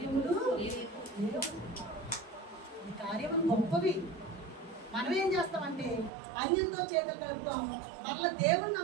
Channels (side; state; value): left; drops out; at 6.1 s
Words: లేవు, నీ కార్యములు గొప్పవి. మనం ఏం చేస్తామంటే అన్యులతో చేతులు కలుపుతాం. మరలా దేవుడిని